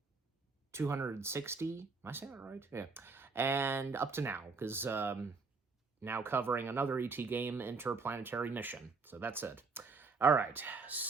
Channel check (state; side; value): quieter; left; 4.4 dB